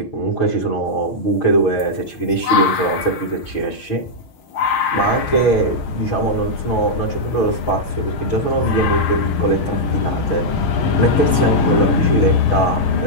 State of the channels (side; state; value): right; late; 6.3 ms